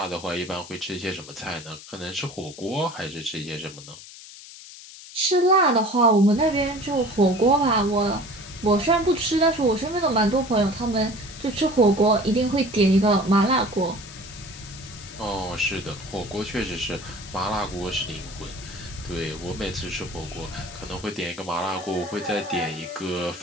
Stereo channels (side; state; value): left; noise; hiss, 16 dB below the sound